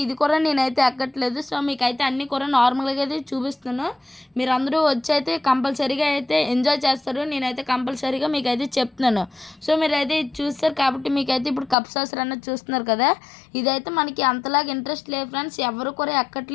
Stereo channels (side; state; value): right; drops out; at 11.8 s